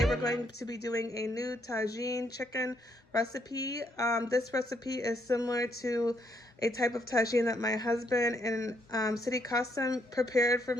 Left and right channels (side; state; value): both; normal; correlation 0.73